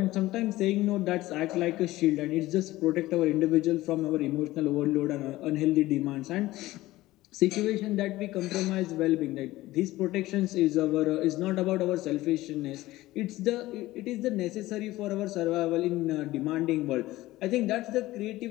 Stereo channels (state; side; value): quieter; right; 17.3 dB